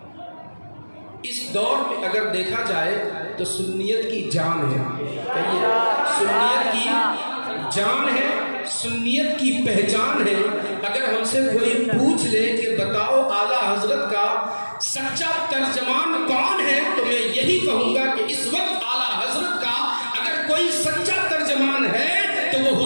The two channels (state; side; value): inverted; both; correlation -1.00